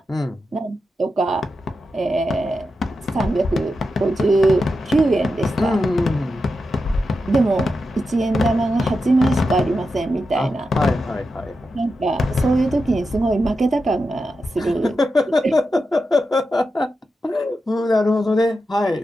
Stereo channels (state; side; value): normal; both; correlation 0.89